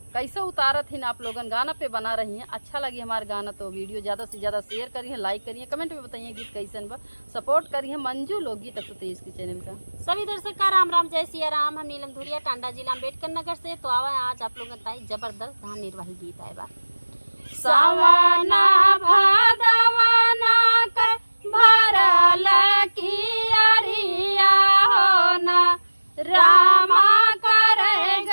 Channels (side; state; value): both; inverted; correlation -1.00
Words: कैसे उतारत ही आप लोगन गाना पे बना रही हैं। अच्छा लगी हमारे गाना तो वीडियो ज़्यादा से ज़्यादा शेयर करिए, लाइक करिए, कमेंट में बताइए गीत कैसन बा। सपोर्ट करिए मंजू लोकगीत 123 के चैनल का। सभी दर्शक का राम राम, जय सिया राम। हम नीलम धुरिया, टांडा जिला अम्बेडकर नगर से। तो आवा आज आप लोगों का जबरदस्त धान निर्वाही गीत आए बा। सवना भादवना के भरल कियरिया होना रामा